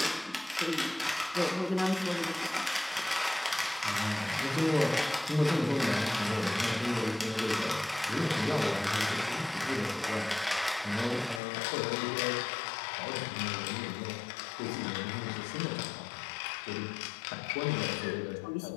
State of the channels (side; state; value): right; drops out; at 11.4 s